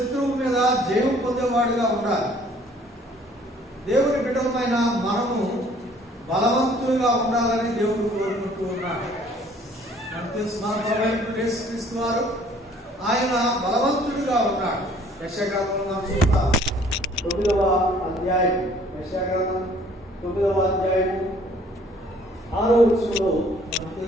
మీద జయం పొందేవాడుగా ఉండాలి. దేవుని బిడ్డలమైన మనము బలవంతులుగా ఉండాలని దేవుడు కోరుకుంటూ ఉన్నాడు. మనకు తెలుసు, మన ప్రభువైన యేసుక్రీస్తు వారు ఆయన బలవంతుడిగా ఉన్నాడు. యెషయాగ్రంథంలో మనం చూస్తాం, 9వ అధ్యాయం, యెషయాగ్రంథం 9వ అధ్యాయం 6వ వచనంలో మనకు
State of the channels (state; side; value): normal; both; correlation 0.57